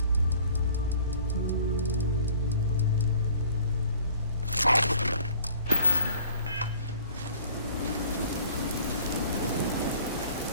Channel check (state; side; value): inverted; both; correlation -0.50